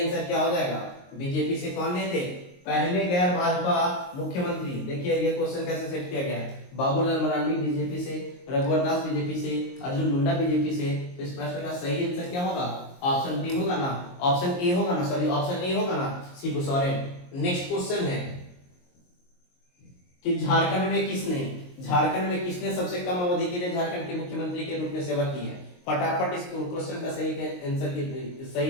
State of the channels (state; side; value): late; right; 22 ms